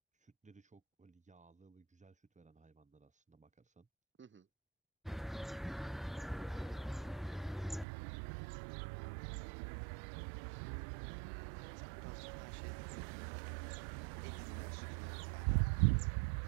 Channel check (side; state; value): left; drops out; at 7.9 s